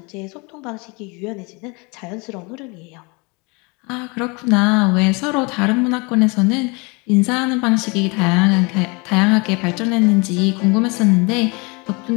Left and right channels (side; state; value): right; quieter; 28.7 dB